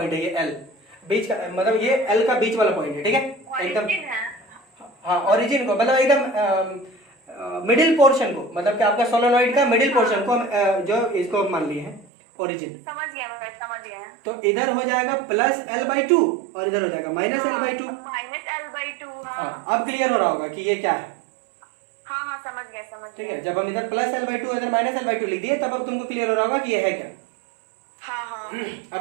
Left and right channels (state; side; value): drops out; left; at 12.1 s